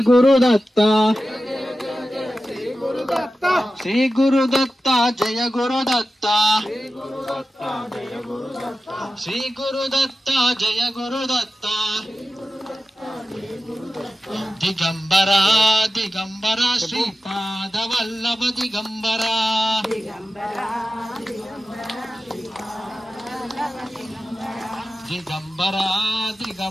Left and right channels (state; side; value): normal; both; correlation 0.93